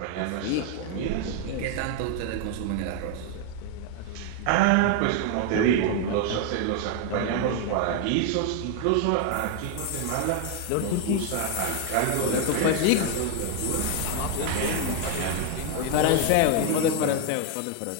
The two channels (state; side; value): different; both; correlation 0.01